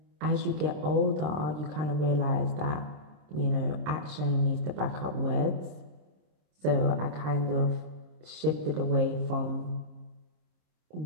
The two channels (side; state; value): left; late; 27 ms